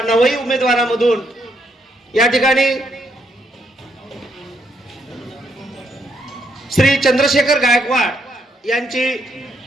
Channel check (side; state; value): both; normal; correlation 0.76